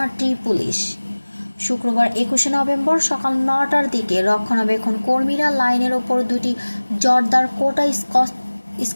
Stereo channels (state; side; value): inverted; both; correlation -1.00